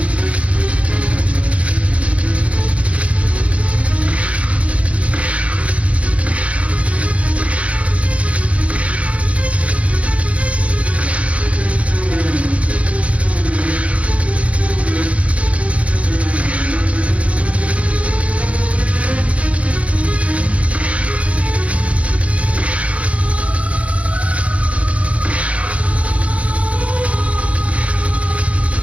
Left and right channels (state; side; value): late; left; 0.064 ms